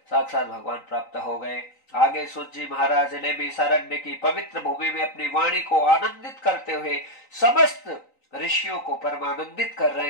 साक्षात भगवान प्राप्त हो गए। आगे सूत जी महाराज ने भी सारण्य की पवित्र भूमि में अपनी वाणी को आनंदित करते हुए समस्त ऋषियों को परमानंदित कर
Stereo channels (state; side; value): late; right; 3.9 ms